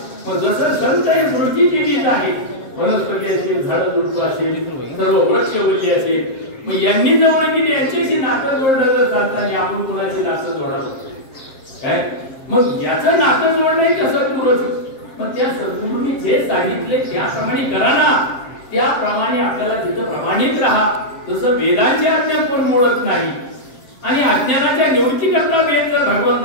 मग जसं संत हे सृष्टी केली आहे, वनस्पती असेल, झाडं झुडपं असेल, सर्व वृक्ष वल्ली असेल, मग यांनी जवळ गेली यांच्याशी नातं जोडलं तर चालतं. आपण कुणाचे नातं जोडावं काय? मग याचं नातं जोडणं कसं पुरवत? मग त्या सद्गुरूंनी जे सांगितले त्याप्रमाणे करा ना, त्याप्रमाणे आपल्याला तिथं प्रमाणित राहा. तसं वेदांची आज्ञा कोण मोडत नाही आणि अज्ञानाच्या निवृत्तीकरता वेद जर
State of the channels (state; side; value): late; right; 7.5 ms